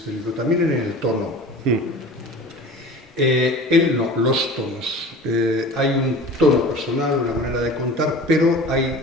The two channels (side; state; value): both; normal; correlation 0.38